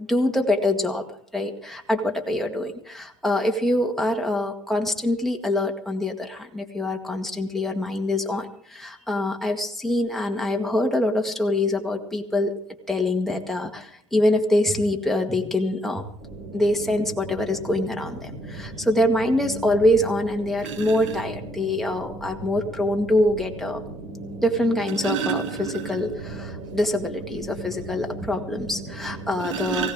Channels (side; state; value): both; normal; correlation 0.71